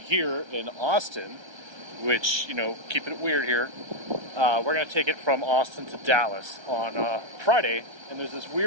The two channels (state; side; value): late; left; 1.3 ms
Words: in Austin, which, keeping it weird here. We're going to take it from Austin to Dallas on Friday, and there's this